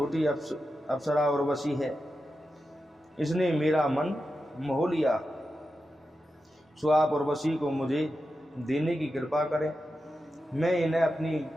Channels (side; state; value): both; normal; correlation 0.90